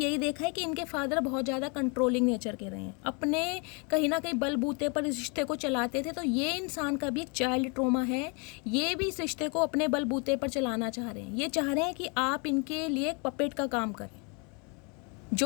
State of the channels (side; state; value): right; quieter; 33.4 dB